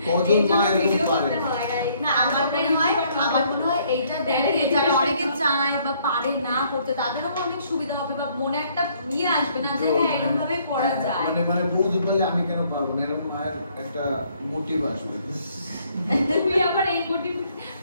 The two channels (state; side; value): inverted; both; correlation -0.66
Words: কজন মা এরকম পারে? না আমার মনে হয় এইটা দেখে যারা অনেকে চায় বা পারে না করতে, তাদেরও অনেক সুবিধা হবে বা মনে একটা নিয়ে আসবে না যে হ্যাঁ এরকম ভাবে করা যায়। মানে বৌদি বললে আমি কেন পারবো না, এরকম মায়ের একটা মোটিভ আসবে। তুমি আবার এই মোটিভ